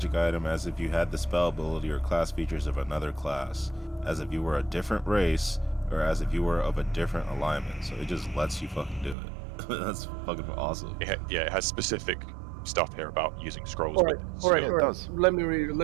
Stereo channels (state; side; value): drops out; left; at 9.2 s